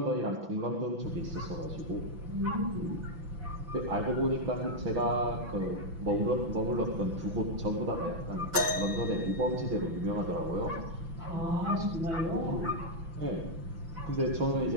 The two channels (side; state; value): left; late; 6.0 ms